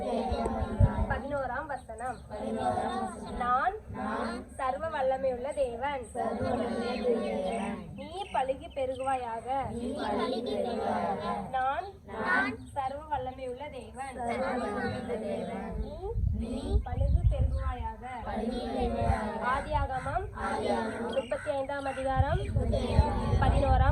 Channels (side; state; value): both; identical; correlation 1.00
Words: 11ஆம் வசனம். பெறுவாயாக. நான் சர்வ வல்லமை உள்ள தேவன். நீ பழுகு பெருகுவாயாக. ஆதியாகமம் 35ஆம் அதிகாரம்